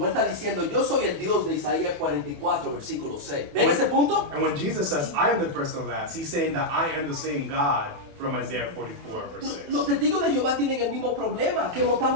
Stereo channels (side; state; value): left; late; 28 ms